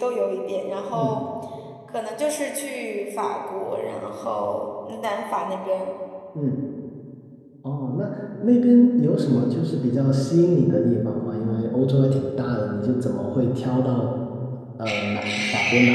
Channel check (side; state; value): both; identical; correlation 1.00